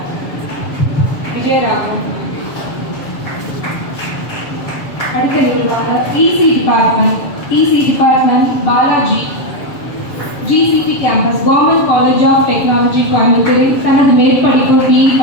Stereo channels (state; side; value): late; right; 7.2 ms